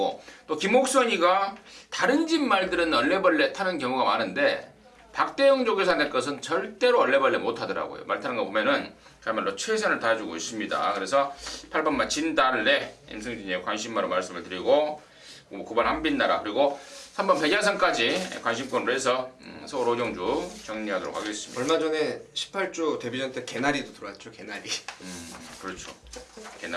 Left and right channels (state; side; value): identical; both; correlation 1.00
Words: 또 김옥선이가 다른 집 말들은 얼레벌레 타는 경우가 많은데 박대영 조교사 낼 것은 절대로 얼레벌레 못하더라고요. 말 타는 거 보면은 그야말로 최선을 다해주고 있습니다. 그래서 8번마 진달래 임승진의 관심마로 말씀을 드리고 9번 한빛나라 그리고 3번 백야선까지 관심권으로 해서 서울 오정주 정리하도록 하겠습니다. 얼마 전에 18조 데뷔전 때 개나리도 들어왔죠. 개나리. 그렇죠.